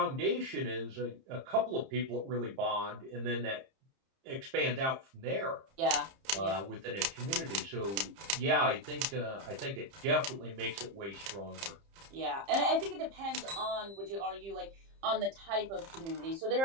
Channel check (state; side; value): late; left; 30 ms